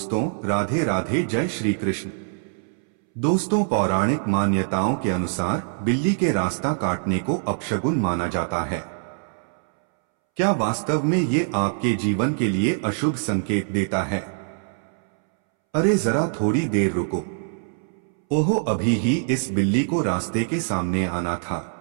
राधे राधे, जय श्री कृष्ण। दोस्तों, पौराणिक मान्यताओं के अनुसार बिल्ली के रास्ता काटने को अपशगुन माना जाता है। क्या वास्तव में ये आपके जीवन के लिए अशुभ संकेत देता है? अरे जरा थोड़ी देर रुको। ओहो, अभी ही इस बिल्ली को रास्ते के सामने आना था।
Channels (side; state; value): left; silent; 63 dB below the other